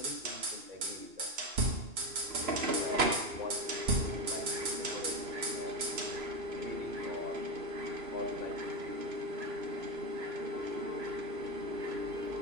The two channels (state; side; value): late; left; 3.0 ms